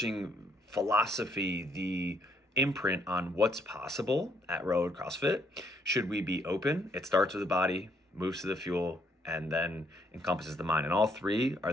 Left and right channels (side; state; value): both; normal; correlation 0.70